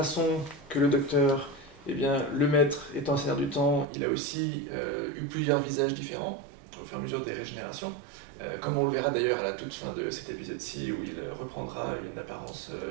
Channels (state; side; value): drops out; left; at 3.9 s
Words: que le docteur, le maître étant Seigneur du Temps, il a aussi eu plusieurs visages différents au fur et à mesure des régénérations. Comme on le verra d'ailleurs à la toute fin de cet épisode-ci, où il reprendra une apparence